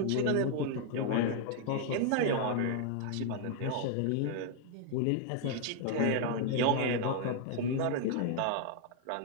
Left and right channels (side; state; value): both; different; correlation 0.00